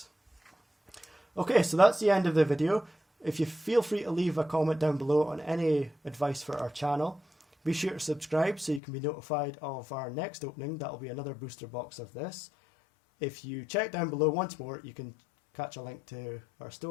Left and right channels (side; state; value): right; drops out; at 8.8 s